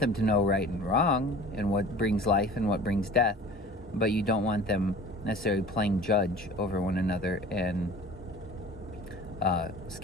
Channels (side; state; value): both; normal; correlation 0.43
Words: to know right and wrong and what brings life and what brings death, but you don't want them necessarily playing judge over one another and